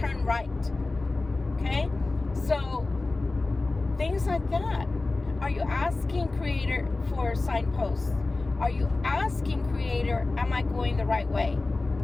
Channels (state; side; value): quieter; right; 3.3 dB